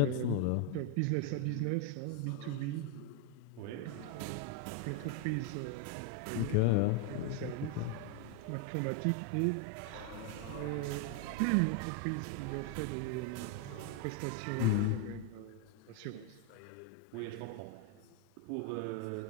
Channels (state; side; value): different; both; correlation 0.01